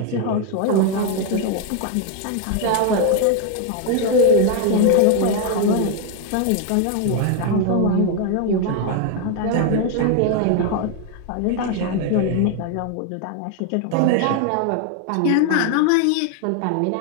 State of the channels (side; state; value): both; different; correlation 0.01